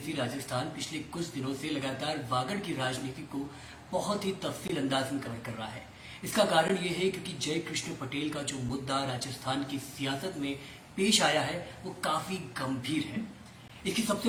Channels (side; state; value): both; identical; correlation 1.00